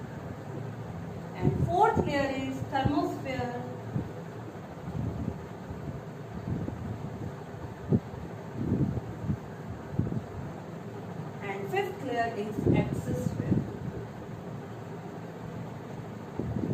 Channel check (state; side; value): identical; both; correlation 1.00